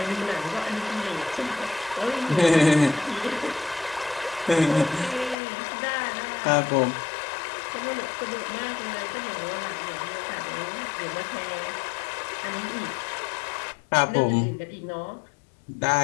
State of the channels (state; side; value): drops out; right; at 5.4 s